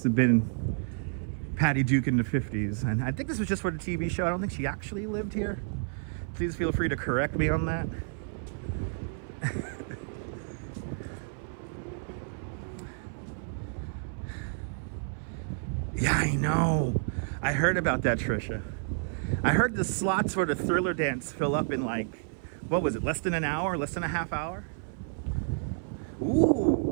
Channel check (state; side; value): silent; left; 58 dB below the other